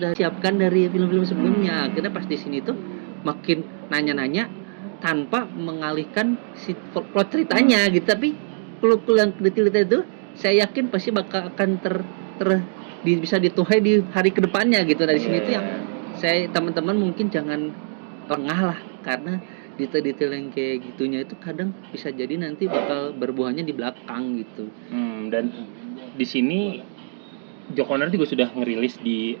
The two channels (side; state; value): left; silent; digital silence